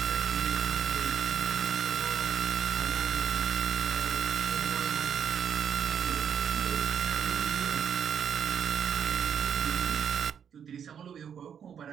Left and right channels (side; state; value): left; quieter; 8.1 dB